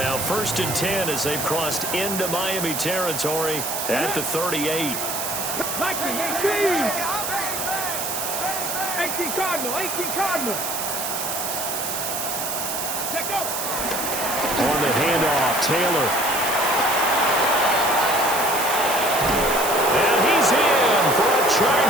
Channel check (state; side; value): noise; right; hiss, 3 dB below the sound